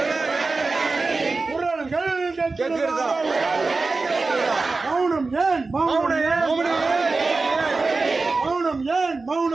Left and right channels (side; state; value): left; quieter; 3.8 dB